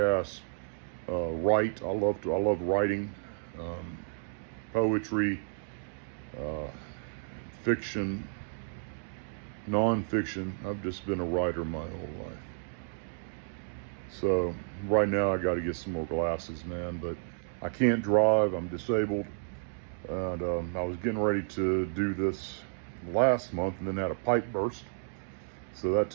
write. I love writing, poetry, fiction, nonfiction. I've just been a writer my whole life. So right now I got to get some more glasses, man, but I can't drive. I'm disabled. And I was getting ready to do this last month and then had a pipe burst. So that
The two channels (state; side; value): silent; left; digital silence